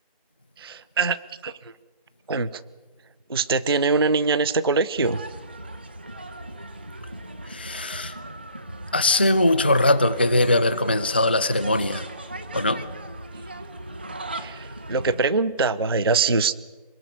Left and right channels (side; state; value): both; inverted; correlation -0.49